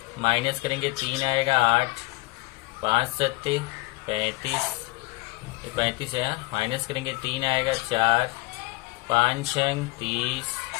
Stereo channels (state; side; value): quieter; right; 23.3 dB